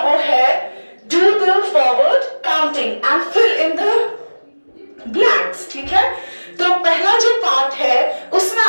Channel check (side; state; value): both; inverted; correlation -1.00